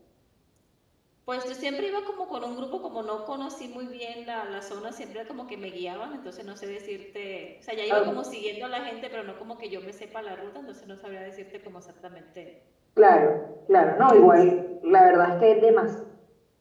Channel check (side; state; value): both; identical; correlation 1.00